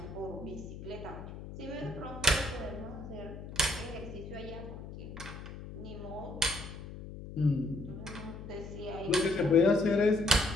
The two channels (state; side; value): noise; left; hum, 11 dB below the sound